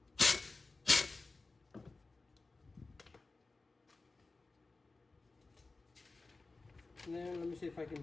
And then let me see if I can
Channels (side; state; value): right; quieter; 3.6 dB